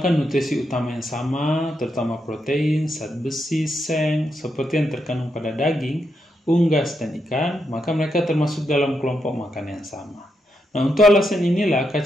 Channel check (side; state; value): both; normal; correlation 0.82